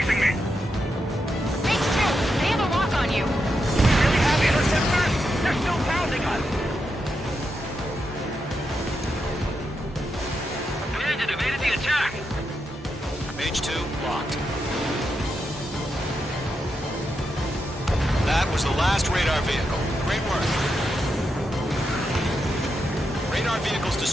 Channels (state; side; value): normal; both; correlation 0.85